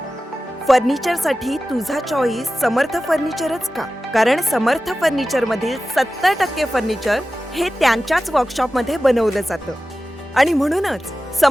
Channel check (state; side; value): normal; both; correlation 0.94